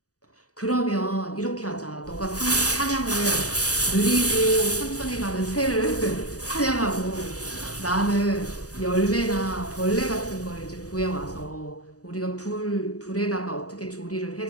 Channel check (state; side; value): late; right; 0.66 ms